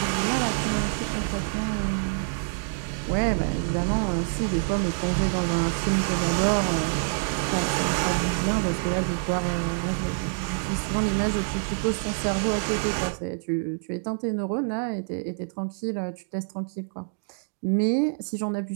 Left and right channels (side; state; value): left; silent; digital silence